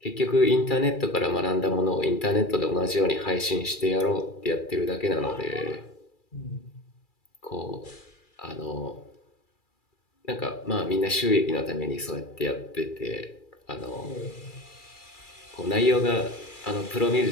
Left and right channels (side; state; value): right; late; 2.3 ms